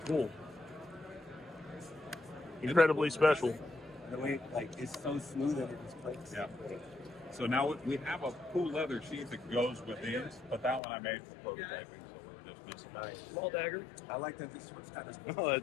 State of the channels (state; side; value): drops out; right; at 10.8 s